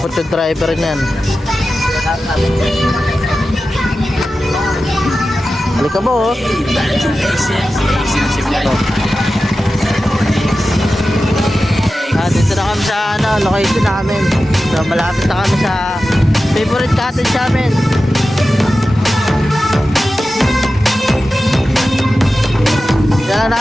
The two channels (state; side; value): normal; both; correlation 0.93